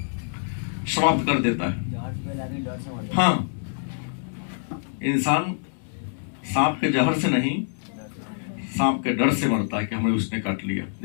समाप्त कर देता है। हाँ, इंसान सांप के जहर से नहीं, सांप के डर से मरता है कि हमें उसने काट लिया।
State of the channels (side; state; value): right; silent; digital silence